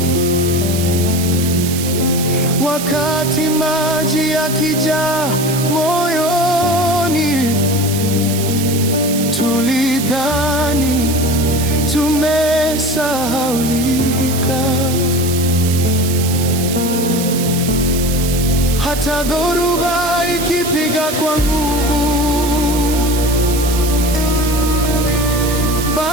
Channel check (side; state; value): right; noise; hiss, 7 dB below the sound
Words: Wakati maji yakijaa moyoni, tulidhani tumesahaulika. Hata dhoruba ikipiga kwa nguvu,